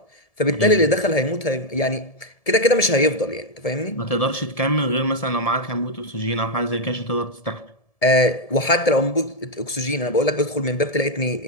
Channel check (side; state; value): right; late; 1.7 ms